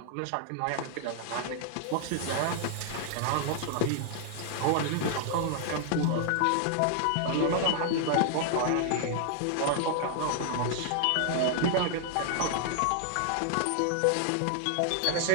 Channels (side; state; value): both; different; correlation 0.00